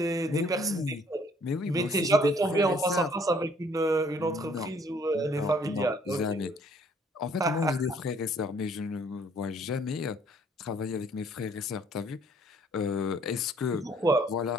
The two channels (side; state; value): both; normal; correlation 0.61